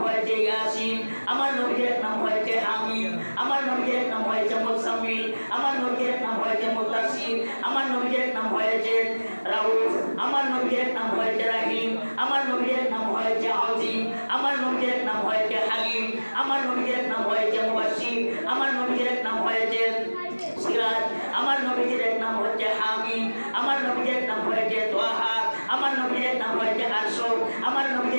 হয়েছে ইয়াসিন। আমার নবীর এক নাম হয়েছে হামিদ। আমার নবীর এক নাম হয়েছে মুসাম্মিল। আমার নবীর এক নাম হয়েছে মুদাসসির। আমার নবীর এক নাম হয়েছে রাউফ। আমার নবীর এক নাম হয়েছে রাহিম। আমার নবীর এক নাম হয়েছে আজিম। আমার নবীর এক নাম হয়েছে হালিম। আমার নবীর এক নাম হয়েছে মুবাশশির। আমার নবীর এক নাম হয়েছে সিরাজ। আমার নবীর এক নাম হচ্ছে হামিদ। আমার নবীর এক নাম হয়েছে তোহা। আমার নবীর এক নাম হয়েছে আরশ। আমার নবীর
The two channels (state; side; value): inverted; both; correlation -1.00